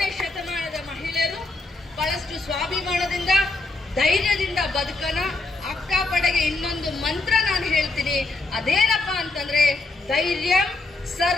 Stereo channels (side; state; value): right; quieter; 3.1 dB